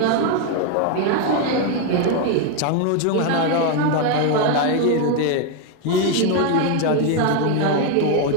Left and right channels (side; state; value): both; different; correlation 0.01